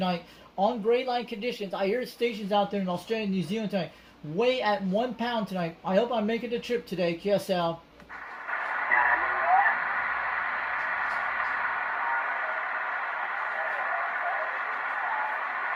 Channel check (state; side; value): identical; both; correlation 1.00